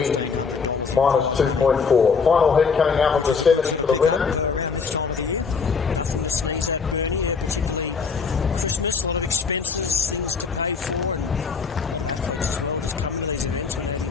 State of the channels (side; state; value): right; quieter; 5.4 dB